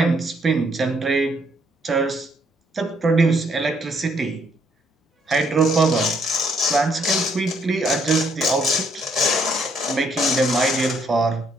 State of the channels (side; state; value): both; normal; correlation 0.69